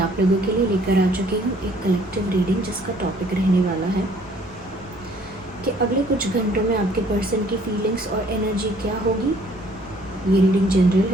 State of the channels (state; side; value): noise; right; rumble, 24 dB below the sound